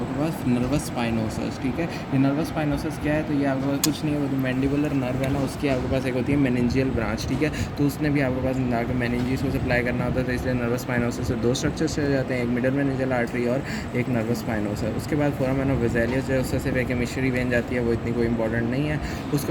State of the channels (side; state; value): both; identical; correlation 1.00